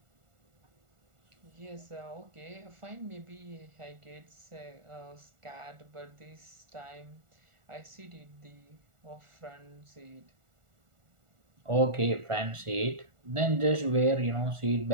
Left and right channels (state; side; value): late; left; 1.4 ms